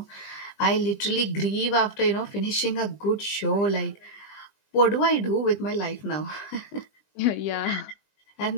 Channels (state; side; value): late; right; 20 ms